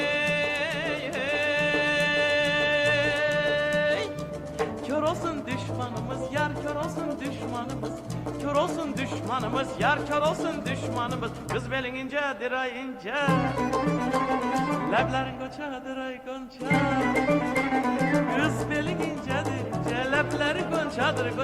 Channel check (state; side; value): identical; both; correlation 1.00